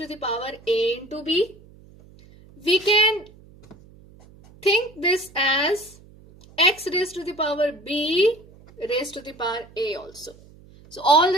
the power a into b. We can think this as x raised to the power b raised to the power a also. So all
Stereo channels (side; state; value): right; noise; hum, 24 dB below the sound